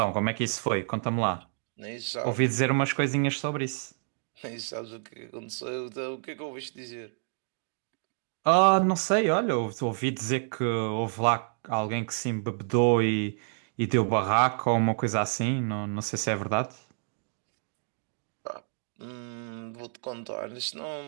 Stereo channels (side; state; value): left; silent; digital silence